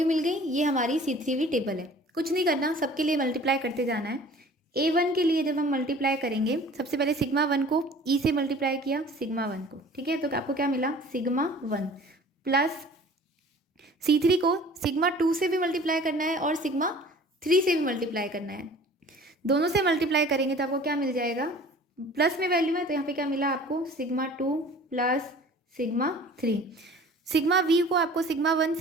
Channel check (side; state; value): both; normal; correlation 0.47